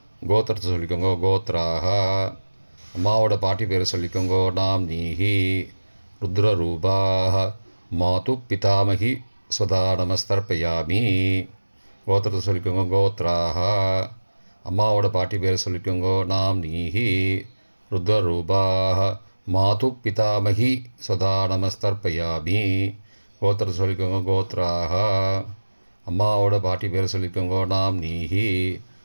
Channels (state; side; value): inverted; both; correlation -1.00